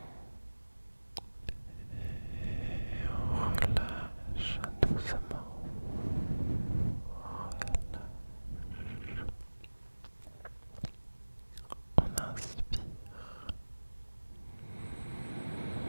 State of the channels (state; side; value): inverted; both; correlation -1.00